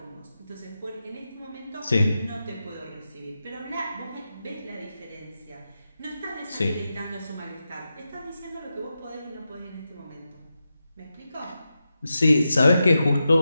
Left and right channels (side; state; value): both; inverted; correlation -0.90